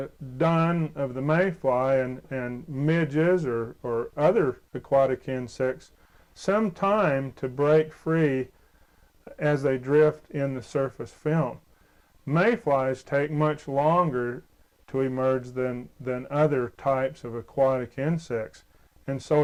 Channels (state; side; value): identical; both; correlation 1.00